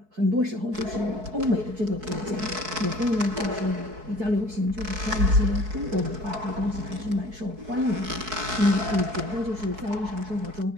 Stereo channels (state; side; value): late; left; 4.6 ms